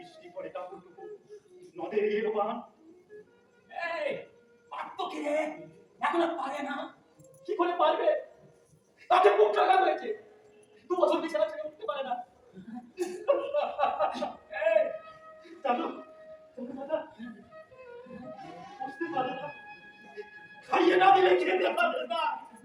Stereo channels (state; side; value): identical; both; correlation 1.00